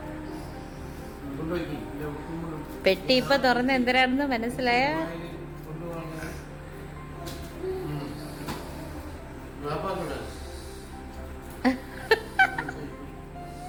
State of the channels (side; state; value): both; identical; correlation 1.00